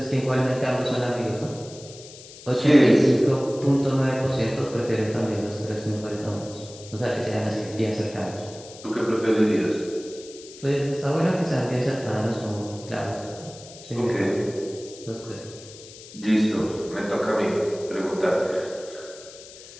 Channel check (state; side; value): noise; left; hiss, 18 dB below the sound